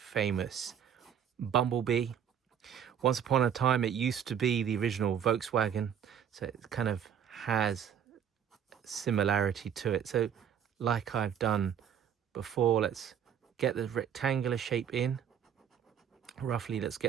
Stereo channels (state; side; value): quieter; left; 8.5 dB